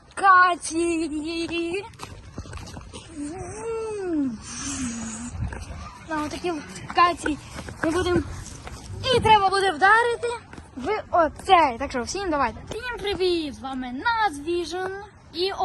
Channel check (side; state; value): both; identical; correlation 1.00